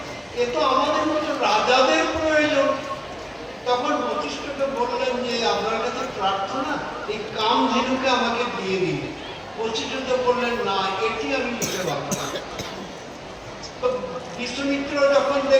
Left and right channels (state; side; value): identical; both; correlation 1.00